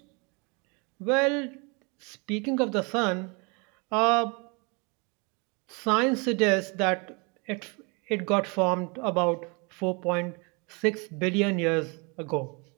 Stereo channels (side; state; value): left; quieter; 31.0 dB